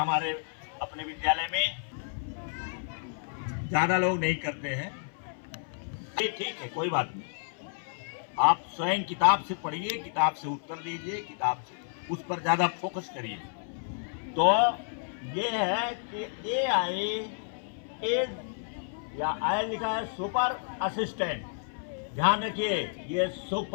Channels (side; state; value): right; silent; 57 dB below the other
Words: अपने विद्यालय में? ज्यादा लोग नहीं करते हैं। ये ठीक है, कोई बात नहीं। आप स्वयं किताब से पढ़िए, किताब से उत्तर दीजिए, किताब से उस पर ज्यादा फोकस करिए। तो ये है कि AI इज, या आई लिखा है सुपर असिस्टेंट। ध्यान रखिए, ये